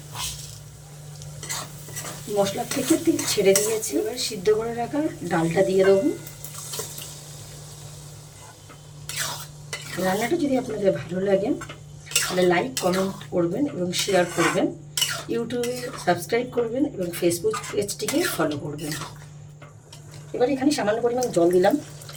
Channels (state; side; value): identical; both; correlation 1.00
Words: মশলা থেকে তেল ছেড়ে দিয়েছি, এবার সিদ্ধ করে রাখা ডালটা দিয়ে দেবো। রান্নাটা যদি আপনাদের ভালো লাগে তাহলে লাইক কমেন্ট করবেন এবং শেয়ার করবেন, ইউটিউবে সাবস্ক্রাইব করবেন এবং ফেসবুক পেজটিকে ফলো করবেন। এবার এখানে সামান্য পরিমাণ জল দিলাম।